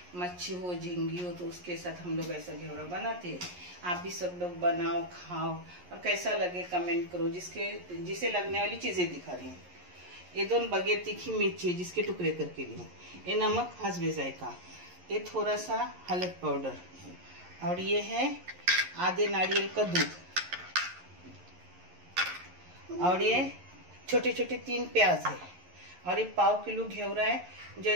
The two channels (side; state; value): left; late; 11 ms